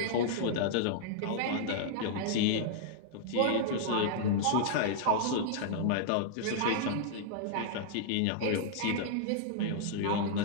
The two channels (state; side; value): different; both; correlation -0.01